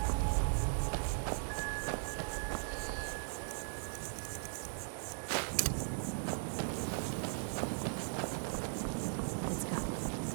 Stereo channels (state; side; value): silent; left; digital silence